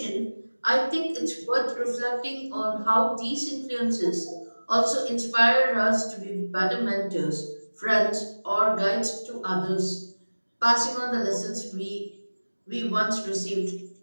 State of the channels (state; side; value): inverted; both; correlation -1.00